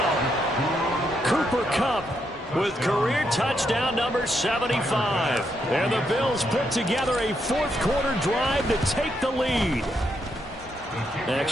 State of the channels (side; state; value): both; normal; correlation 0.79